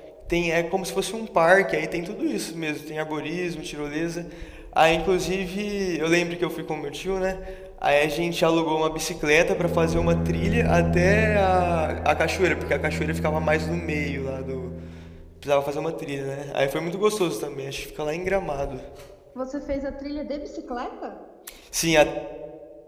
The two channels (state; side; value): identical; both; correlation 1.00